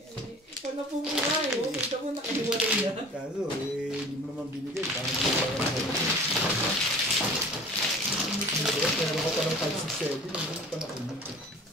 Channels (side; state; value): both; normal; correlation 0.43